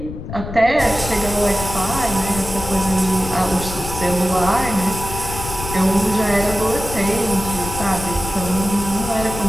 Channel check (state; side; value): noise; left; rumble, 9 dB below the sound